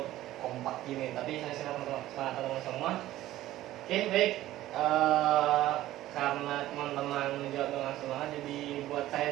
kompak gini, tapi saya silakan teman-teman semua. Oke, baik. Karena teman-teman menjawab dengan semangat, jadi buat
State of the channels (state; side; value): quieter; left; 14.8 dB